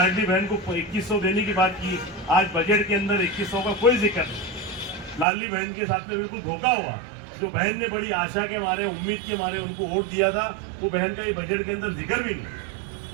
बहन को 2100 देने की बात की, आज बजट के अंदर 2100 का कोई जिक्र नहीं। लाडली बहन के साथ में बिल्कुल धोखा हुआ। जो बहन ने बड़ी आशा के मारे, उम्मीद के मारे उनको वोट दिया था, वो बहन का ये बजट के अंदर जिक्र भी नहीं।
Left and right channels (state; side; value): drops out; left; at 5.2 s